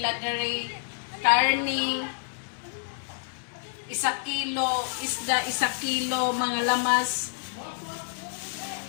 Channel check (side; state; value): right; silent; digital silence